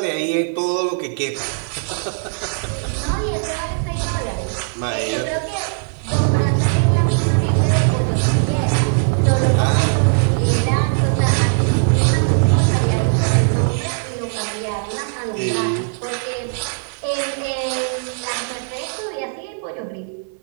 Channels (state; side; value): silent; left; digital silence